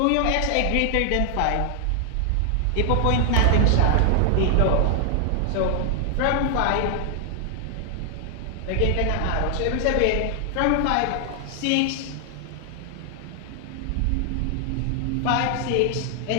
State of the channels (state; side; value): different; both; correlation 0.00